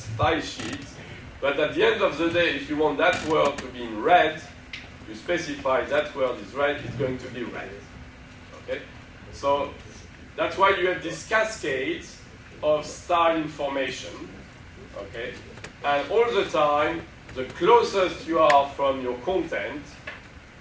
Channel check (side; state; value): both; identical; correlation 1.00